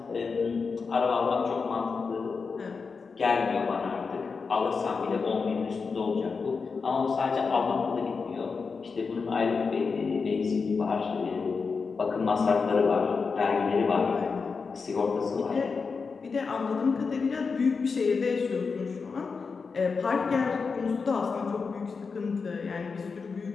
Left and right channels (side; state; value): right; quieter; 5.0 dB